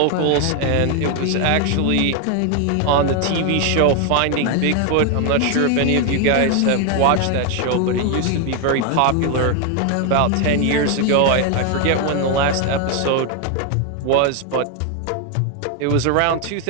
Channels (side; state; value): both; different; correlation 0.01